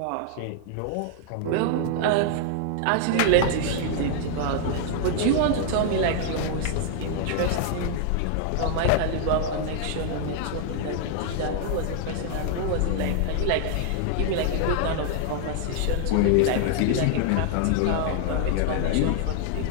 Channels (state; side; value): different; both; correlation 0.00